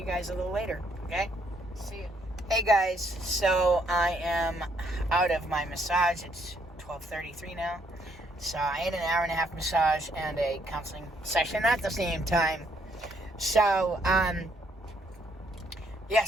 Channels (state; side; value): normal; both; correlation 0.70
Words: guys a little later, okay? See you. Hey guys, so I am out of my massage. It's 12:33 now. So I had an hour and a half massage and a counseling session at the same time. So,